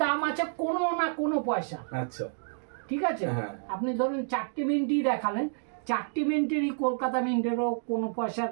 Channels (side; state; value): left; silent; digital silence